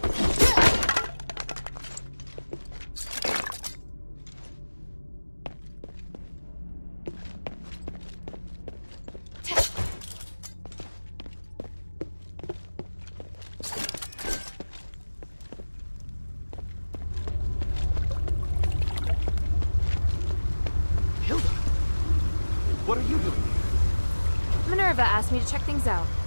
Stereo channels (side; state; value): both; inverted; correlation -1.00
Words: What are you doing here? Minerva asked me to check things out,